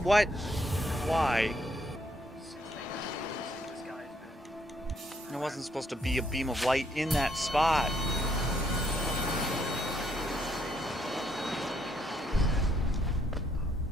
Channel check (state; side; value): normal; both; correlation 0.71